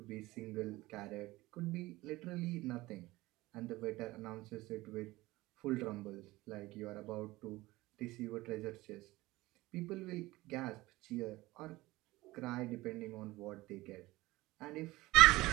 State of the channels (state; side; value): quieter; left; 19.4 dB